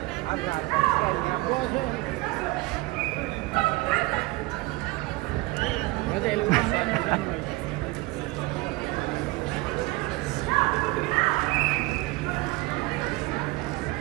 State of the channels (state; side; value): quieter; left; 22.1 dB